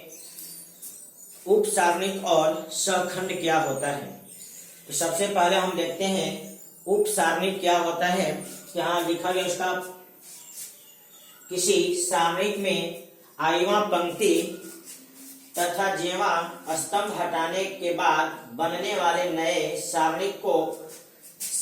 उपसारणिक और सहखंड क्या होता है। तो सबसे पहले हम देखते हैं उपसारणिक क्या होता है। यहाँ लिखा गया उसका किसी सारणिक में आईवा पंक्ति तथा जेवा स्तंभ हटाने के बाद बनने वाले नए सारणिक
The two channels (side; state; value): both; identical; correlation 1.00